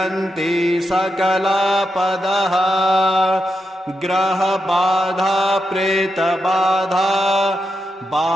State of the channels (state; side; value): normal; both; correlation 0.86